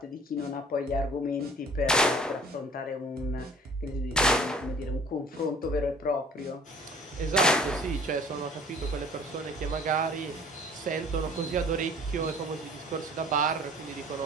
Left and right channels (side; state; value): both; normal; correlation 0.50